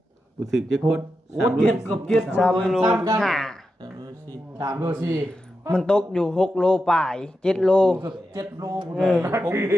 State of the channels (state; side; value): normal; both; correlation 0.89